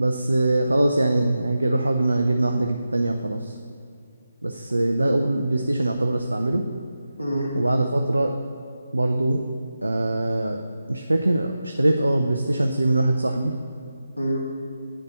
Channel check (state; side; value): inverted; both; correlation -0.91